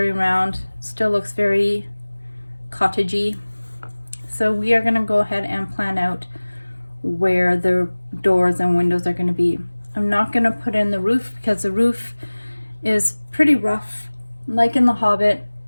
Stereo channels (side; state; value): both; inverted; correlation -1.00